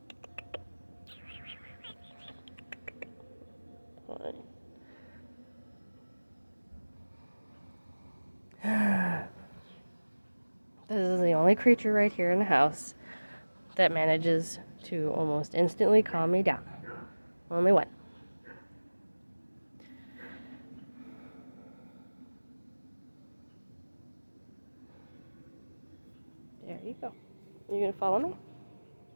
This is the only creature right here in the house that manages to almost instantly calm me down. Only one. There you go. You gonna follow me?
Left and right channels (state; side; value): inverted; both; correlation -1.00